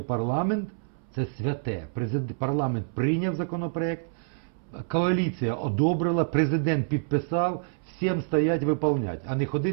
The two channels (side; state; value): left; silent; 60 dB below the other